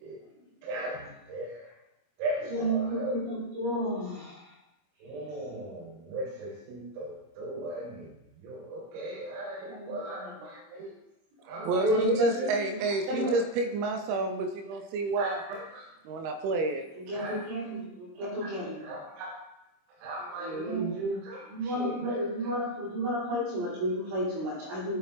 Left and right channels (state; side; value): late; left; 25 ms